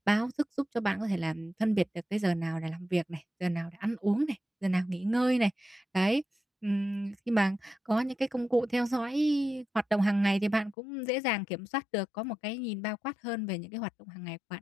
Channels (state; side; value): drops out; right; at 10.8 s